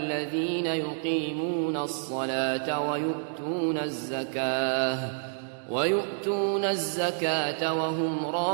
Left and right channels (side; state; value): left; silent; digital silence